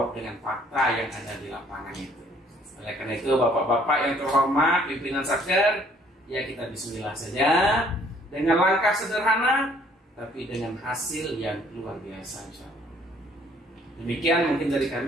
dengan fakta yang ada di lapangan itu. Oleh karena itu, bapak-bapak yang terhormat, pimpinan Satker, ya kita bismillah saja, dengan langkah sederhana, tapi dengan hasil yang luar biasa, insya Allah. Demikian mungkin dari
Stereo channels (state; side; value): normal; both; correlation 0.61